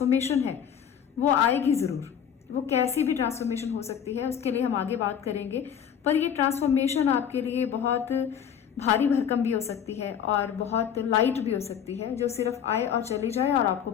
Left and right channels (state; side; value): quieter; right; 8.4 dB